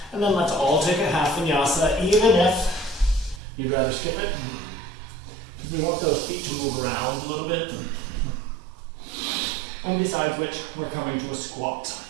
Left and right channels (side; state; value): left; drops out; at 3.4 s